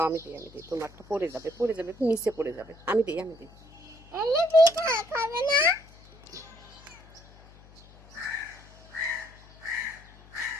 আমি দিই তোমারটা পড়ে যাবে নিচে পড়ে যাবে। আমি দিই খাবে না?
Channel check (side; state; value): left; noise; hum, 23 dB below the sound